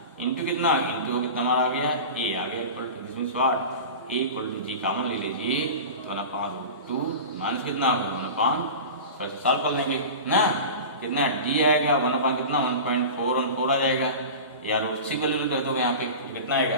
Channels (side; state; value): both; inverted; correlation -0.31